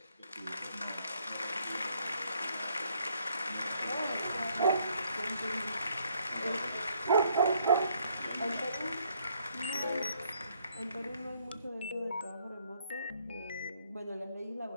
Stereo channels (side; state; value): both; inverted; correlation -0.68